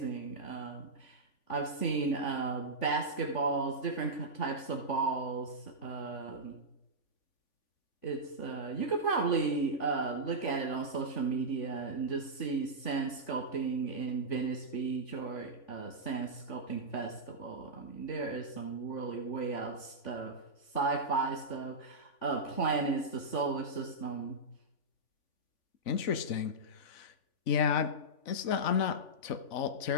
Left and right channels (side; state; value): right; late; 3.5 ms